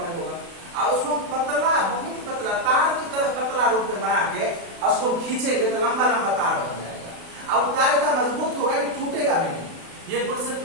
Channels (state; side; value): late; left; 36 ms